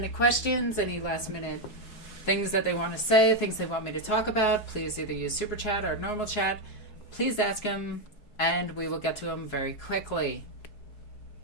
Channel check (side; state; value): right; late; 4.7 ms